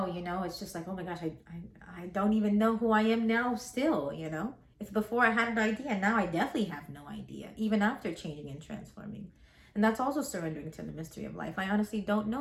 you know, it's just like, oh my gosh, I don't even know who I am now still, you know? If before I had an idea, now I definitely have no idea, even after changing and transforming. And that's also surrendering to the mystery of life. I honestly don't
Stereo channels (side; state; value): both; identical; correlation 1.00